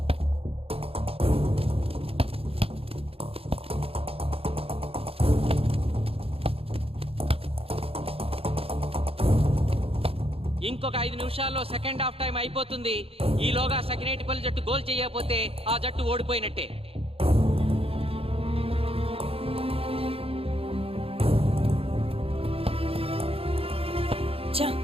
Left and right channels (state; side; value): late; left; 0.28 ms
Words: ఇంకొక 5 నిమిషాల్లో సెకండ్ హాఫ్ టైం అయిపోతుంది. ఈలోగా సకినేటిపల్లి జట్టు గోల్ చేయకపోతే ఆ జట్టు ఓడిపోయినట్టే.